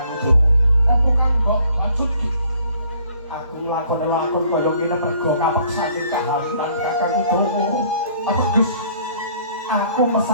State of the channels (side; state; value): both; inverted; correlation -0.59